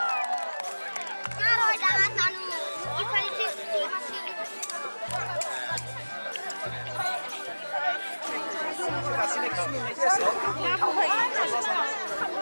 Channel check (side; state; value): both; inverted; correlation -1.00